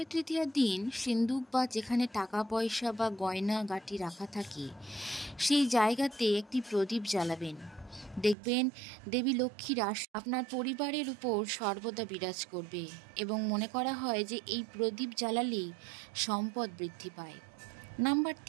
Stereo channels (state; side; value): drops out; left; at 8.3 s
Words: তৃতীয়ার দিন সিন্দুক বা যেখানে টাকা পয়সা বা গয়না গাটি রাখা থাকে সেই জায়গাতে একটি প্রদীপ জ্বালাবেন। দেখবেন দেবী লক্ষ্মীর আপনার পরিবারের উপর সর্বদা বিরাজ করবে এবং মনে করা হয় যে এই প্রদীপ জ্বালালেই সম্পদ বৃদ্ধি পায়। নাম্বার